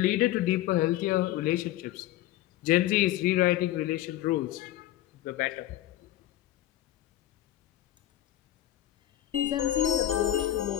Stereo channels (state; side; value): quieter; right; 14.0 dB